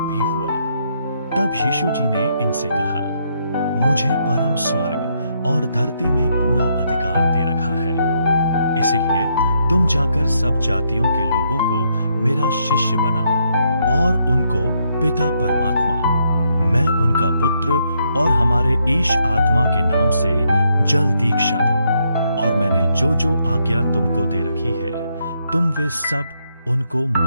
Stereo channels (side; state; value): both; inverted; correlation -0.76